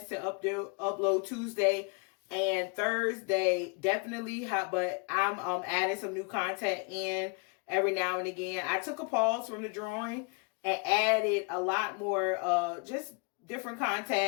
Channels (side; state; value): right; quieter; 34.1 dB